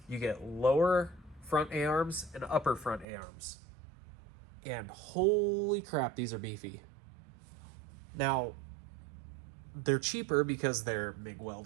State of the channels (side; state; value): left; drops out; at 3.1 s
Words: You get lower front A-arms and upper front A-arms. And holy crap, these are beefy. Now, they're cheaper because they're MIG